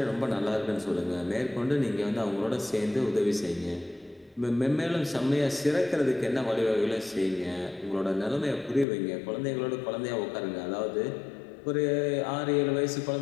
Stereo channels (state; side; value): drops out; right; at 8.8 s